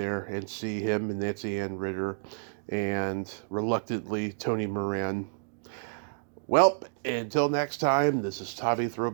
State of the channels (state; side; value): silent; left; digital silence